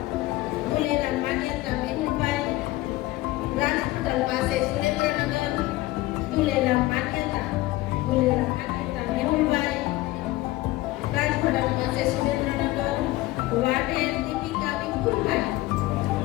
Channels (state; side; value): quieter; right; 18.3 dB